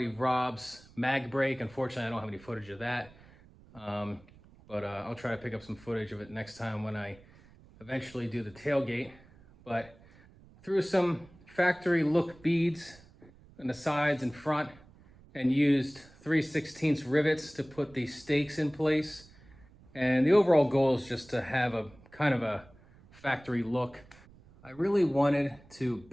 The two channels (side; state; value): right; noise; rumble, 25 dB below the sound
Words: Rob's mag brake. Unfortunately, I don't have any footage of that, but I'll try to pick up some footage of it next time when I eventually do the tailgate. But threw some factory look beads on the sides and front, and used 3/16 rivets to put the stakes in place. And the overall goal is just to have a kind of a factory look. I really wanted to